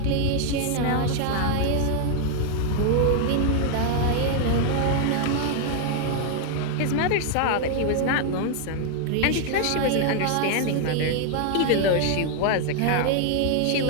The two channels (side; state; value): both; different; correlation 0.00